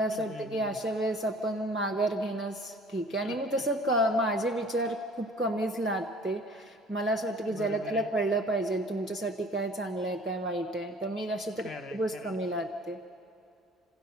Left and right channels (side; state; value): both; normal; correlation 0.50